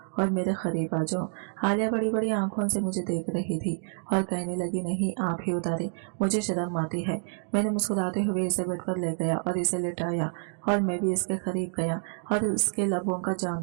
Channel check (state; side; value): silent; left; digital silence